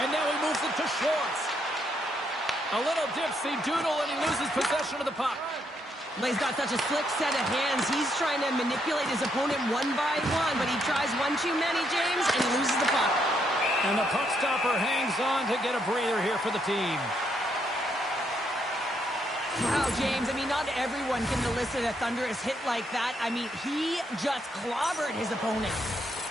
now he moves it to Schwartz. A little dipsy doodle, and he loses possession of the puck. Well, he's got such a slick set of hands. He's trying to manipulate his opponent one by one, but he tries one too many, James, and he loses the puck. And the puck stopper hangs on to get a breather here for the team. Wow, James, I mean, not everyone can elicit a thunderous hit like that. I mean, he just clobbered his opponent.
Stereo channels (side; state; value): both; normal; correlation 0.75